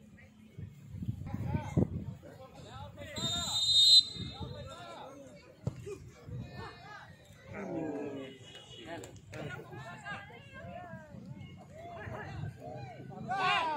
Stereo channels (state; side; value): identical; both; correlation 1.00